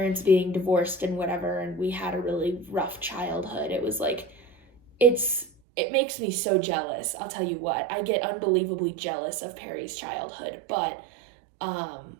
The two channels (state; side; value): drops out; left; at 5.5 s